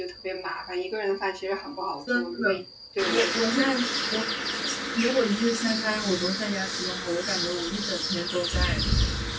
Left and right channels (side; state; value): both; identical; correlation 1.00